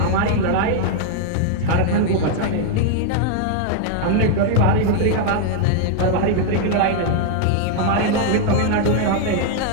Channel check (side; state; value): both; different; correlation 0.00